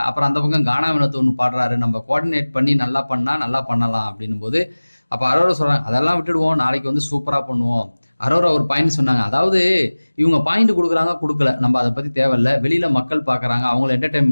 அப்புறம் அந்த பக்கம் கானா வினோத் ஒன்று பாடுறாரு, நம்ம கோஆர்டினேட் பண்ணி நல்லா பண்ணா நல்லா பண்ணலாம் அப்படின்னும் போது, அப்ப அரோரா சொல்றாங்க, அதெல்லாம் விட்டுடுவோம், நாளைக்கு வந்து சூப்பரா பண்ணுவோம். அரோரா ஒரு பாயிண்ட் சொன்னாங்க, அதாவது இவங்க பாயிண்ட் கொடுக்குறாங்க கொடுக்கல, நம்ம அதை பத்தி தேவையில்ல. வெளியில மக்கள் பாக்குறாங்க, அவங்களை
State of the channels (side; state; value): both; inverted; correlation -1.00